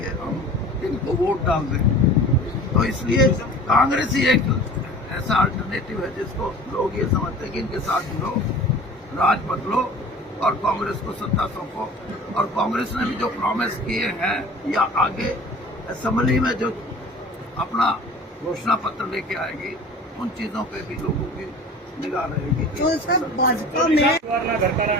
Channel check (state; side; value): normal; both; correlation 0.42